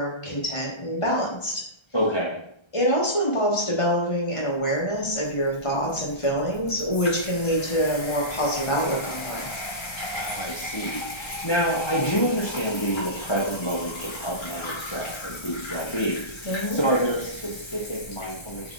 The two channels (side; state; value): right; late; 1.3 ms